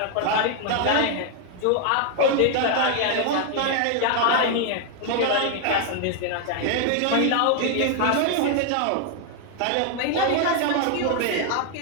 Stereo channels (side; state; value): both; different; correlation 0.00